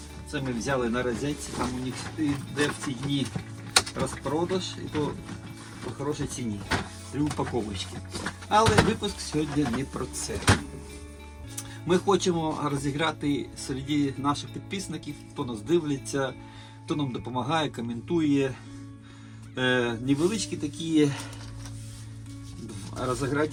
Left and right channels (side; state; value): both; identical; correlation 1.00